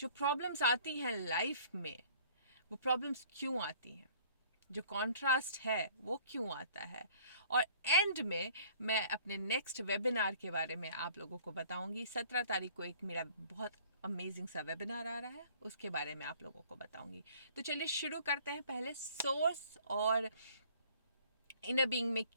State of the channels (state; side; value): inverted; both; correlation -0.53